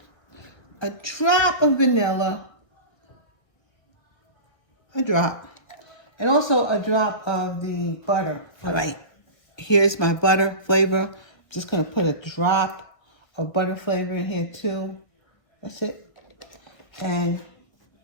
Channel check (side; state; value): right; late; 1.4 ms